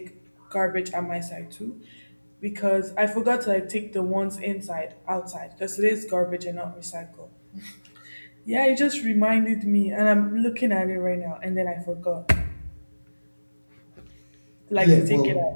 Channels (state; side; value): inverted; both; correlation -1.00